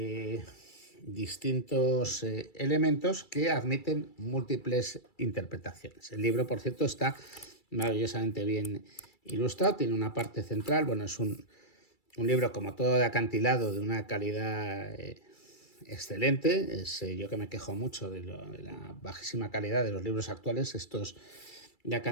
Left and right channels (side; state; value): right; late; 2.3 ms